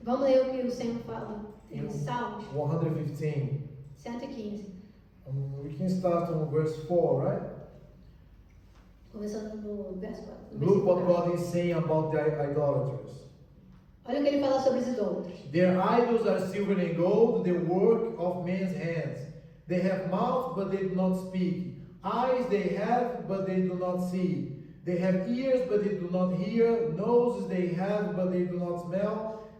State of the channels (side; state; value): both; identical; correlation 1.00